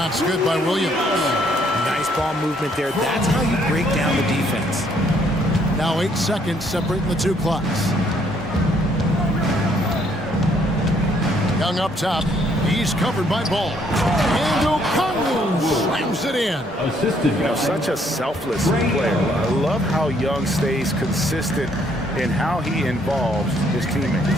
good by Williams. Nice ball movement there. That's how you break down the defense. Now 8 seconds separating the two clocks. Young up top. He's covered by Ball. And O'Connell slams it in. Assistant. Such a selfless player. I love how Young stays consistent in how he involves his teammates.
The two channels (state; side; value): normal; both; correlation 0.67